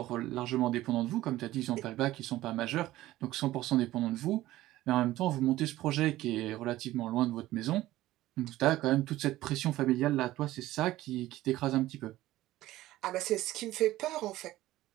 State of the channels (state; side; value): quieter; left; 16.0 dB